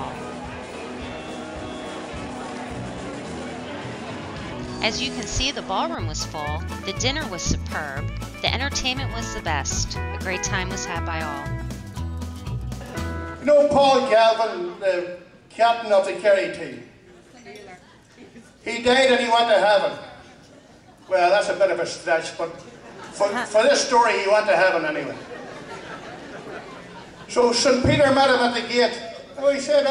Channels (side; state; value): both; identical; correlation 1.00